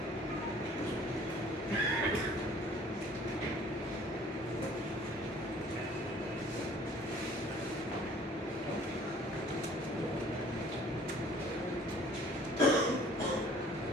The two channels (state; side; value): normal; both; correlation 0.53